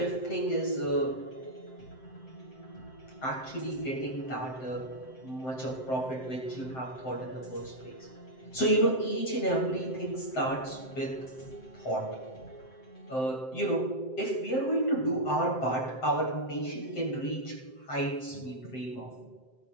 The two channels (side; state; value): right; late; 7.7 ms